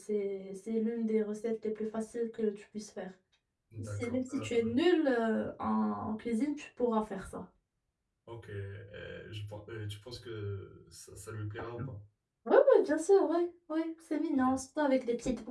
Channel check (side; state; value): both; identical; correlation 1.00